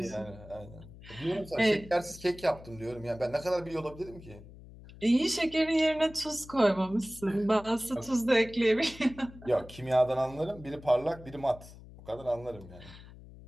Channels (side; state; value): left; noise; hum, 18 dB below the sound